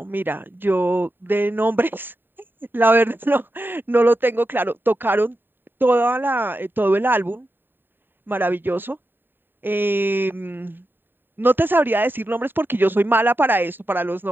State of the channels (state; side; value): late; left; 0.095 ms